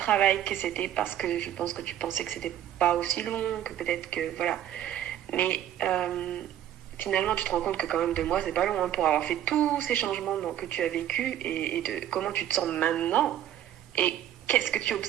que c'était, parce que je pense que tu pensais que c'était pas aussi long, que peut-être que, voilà. Mais finalement, tu te rends compte que quand même 2 mois, c'est pas long, hein, pour avoir fait tous ces changements que tu as vécu, et de comment tu te sens maintenant. Et qu'est-ce que tu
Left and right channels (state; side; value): quieter; left; 11.3 dB